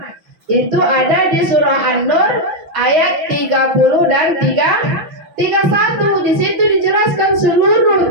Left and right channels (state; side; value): late; left; 6.2 ms